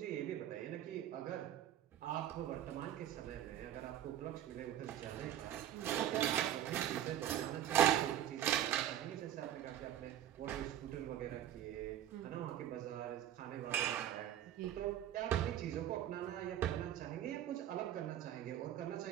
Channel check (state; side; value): quieter; left; 11.4 dB